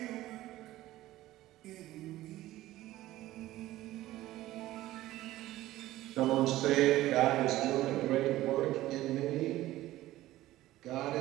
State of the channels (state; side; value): quieter; left; 15.7 dB